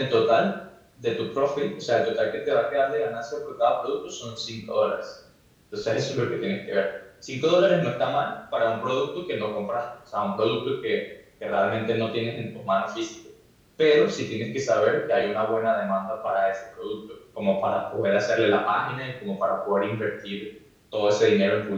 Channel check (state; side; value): identical; both; correlation 1.00